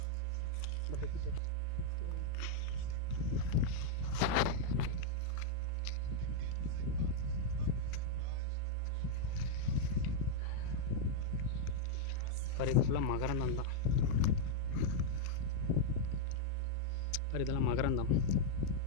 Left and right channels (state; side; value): different; both; correlation -0.01